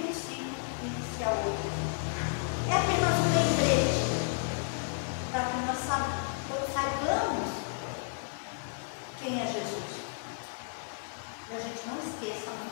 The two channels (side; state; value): right; silent; digital silence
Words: um ciclo e inicia outro. É apenas um lembrete para que nós saibamos quem é Jesus. E a gente não esqueça